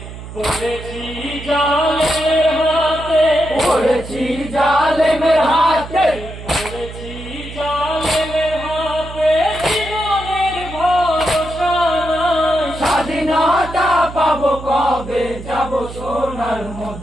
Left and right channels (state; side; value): noise; right; hum, 12 dB below the sound